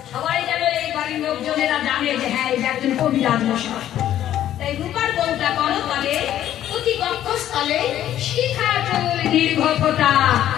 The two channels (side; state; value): right; quieter; 11.8 dB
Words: সবাই যেন এই বাড়ির লোকজনেরা জানে যে হ্যাঁ এটা একজন কবিরাজ মশাই। তাই রূপার বউটা করো তবে অতি কক্ষস্থলে শিখা চুল দীর্ঘ ফোঁটা